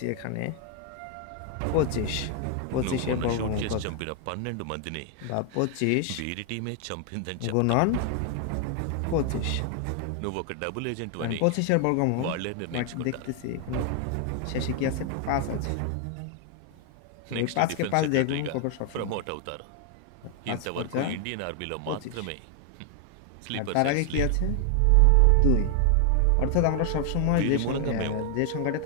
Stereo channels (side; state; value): both; different; correlation 0.00